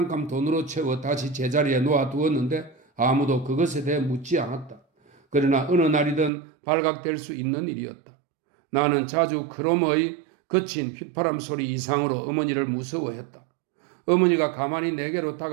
돈으로 채워 다시 제자리에 놓아두었는데 아무도 그것에 대해 묻지 않았다. 그러나 어느 날이든 발각될 수 있는 일이었다. 나는 자주 그놈의 거친 휘파람 소리 이상으로 어머니를 무서워했다. 어머니가 가만히 내게로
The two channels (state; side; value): drops out; left; at 6.3 s